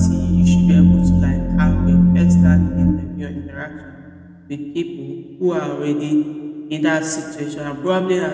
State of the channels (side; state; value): both; identical; correlation 1.00